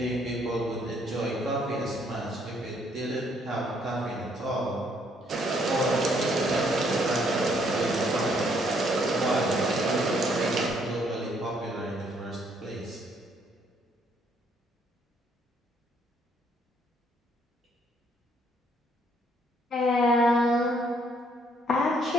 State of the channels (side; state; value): both; normal; correlation 0.67